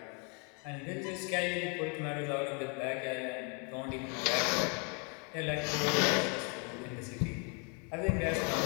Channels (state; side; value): quieter; right; 36.1 dB